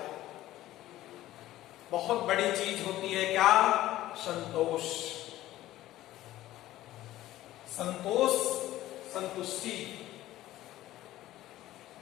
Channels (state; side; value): quieter; right; 15.0 dB